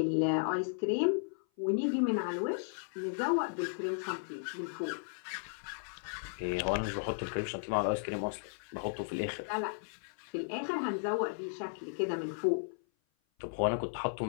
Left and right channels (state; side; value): silent; right; 54 dB below the other